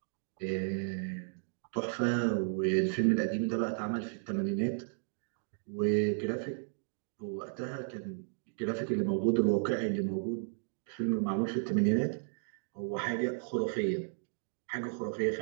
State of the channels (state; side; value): silent; left; digital silence